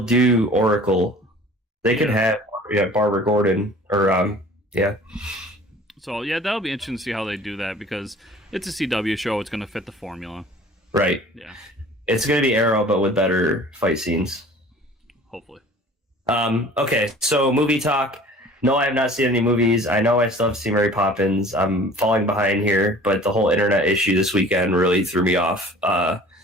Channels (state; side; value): normal; both; correlation 0.47